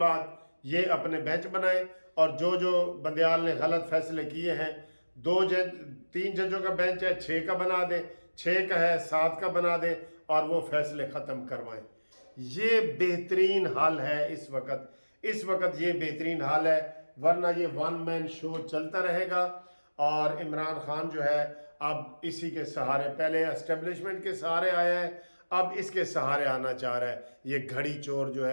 ये अपने बेंच बनाएं और जो जो बंदियाल ने गलत फैसले किए हैं 3 जजों का बेंच है 6 का बना दें, 6 का है 7 का बना दें और वो फैसले ख़त्म करवाएं। ये बेहतरीन हाल है इस वक्त ये बेहतरीन हाल है, वरना ये वन मैन शो चलता रहेगा। और इमरान खान जो है अब इसी के सहारे, पहले एस्टेब्लिशमेंट के सहारे आया है, अब इसके सहारे आना चाह रहा है। ये घड़ी चोर जो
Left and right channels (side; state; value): both; inverted; correlation -1.00